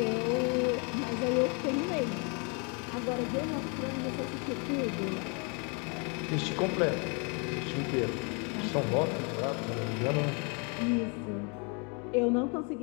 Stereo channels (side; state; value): right; quieter; 34.8 dB